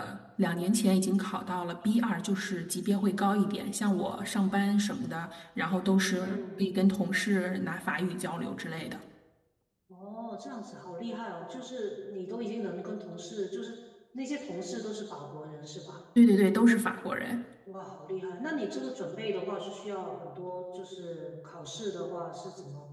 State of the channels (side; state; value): both; identical; correlation 1.00